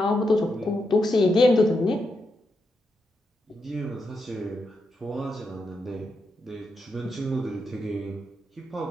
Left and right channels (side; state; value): both; normal; correlation 0.84